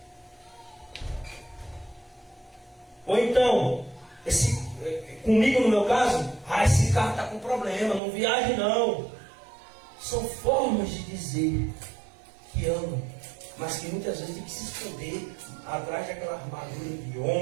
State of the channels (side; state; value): left; drops out; at 8.0 s